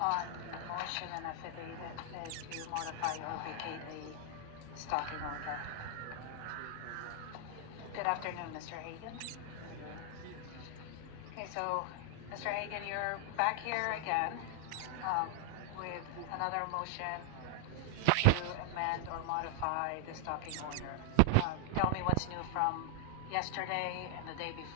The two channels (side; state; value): both; different; correlation 0.00